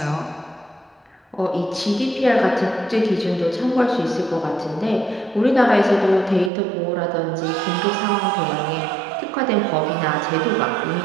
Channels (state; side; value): drops out; left; at 6.5 s